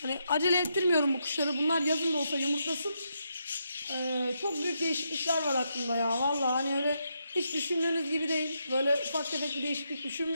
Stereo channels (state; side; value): inverted; both; correlation -0.80